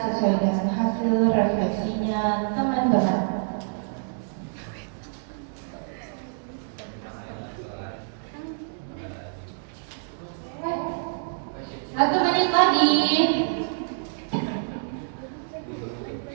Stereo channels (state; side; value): silent; left; digital silence